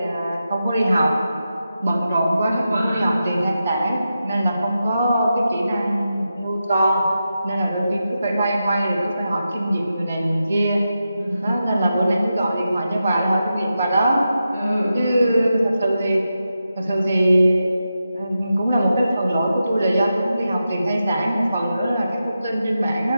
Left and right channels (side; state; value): both; inverted; correlation -0.89